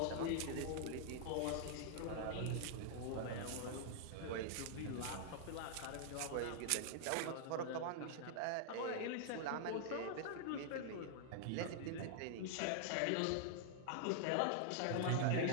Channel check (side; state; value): both; different; correlation -0.01